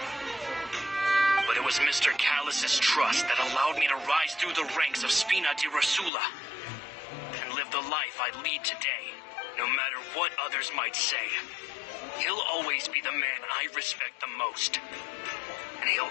But it was Mr. Callis's trust that allowed me to rise through the ranks of Spina di Rosula and live the life I lead today, no matter what others might say. He'll always be the man I respect the most, and he'll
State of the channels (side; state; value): right; drops out; at 6.1 s